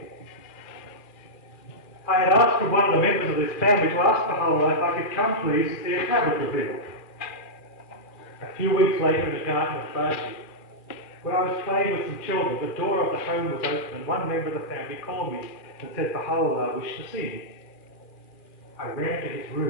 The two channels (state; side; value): late; right; 2.4 ms